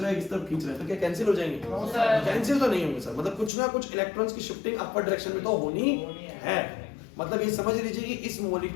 है, इस तरफ खींच रहा है, तो क्या कैंसिल हो जाएंगे? कैंसिल तो नहीं होंगे सर, मतलब कुछ ना कुछ इलेक्ट्रॉन्स की शिफ्टिंग अपर डायरेक्शन में तो होनी है। मतलब ये समझ लीजिए कि इस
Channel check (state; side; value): drops out; right; at 3.5 s